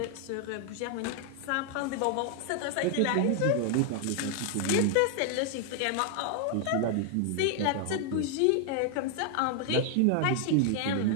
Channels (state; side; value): different; both; correlation 0.00